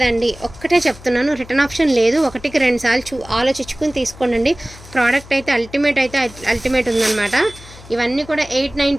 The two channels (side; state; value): left; noise; hum, 19 dB below the sound